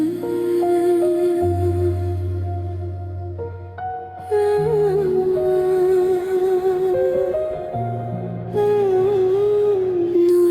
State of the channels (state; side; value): identical; both; correlation 1.00